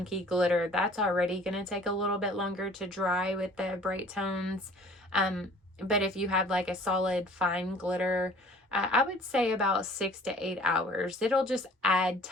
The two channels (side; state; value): both; normal; correlation 0.51